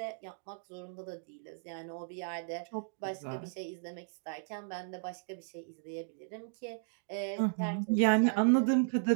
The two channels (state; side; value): silent; left; digital silence